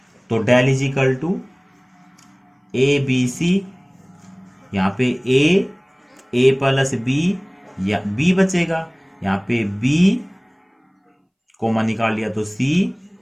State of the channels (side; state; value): both; identical; correlation 1.00